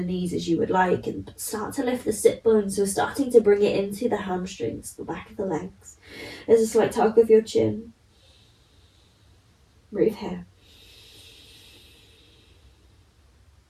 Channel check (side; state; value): both; identical; correlation 1.00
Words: knees as you would like, and start to lift the sit bones, so starting to bring it into the hamstrings, the back of the legs. There's a slight tuck of your chin. Breathe here.